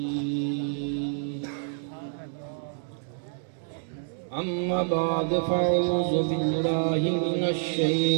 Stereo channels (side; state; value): left; silent; digital silence